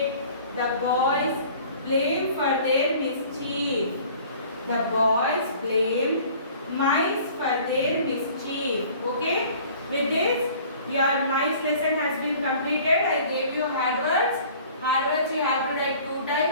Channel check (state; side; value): inverted; both; correlation -0.49